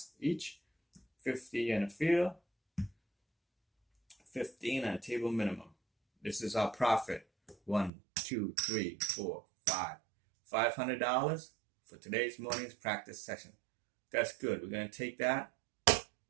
each. 50 in the field. 15 on table minimum. This is our profit. 1, 2, 3, 4, 5. $500 for today's morning's practice session. That's good. We're going to take that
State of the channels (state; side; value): drops out; left; at 7.9 s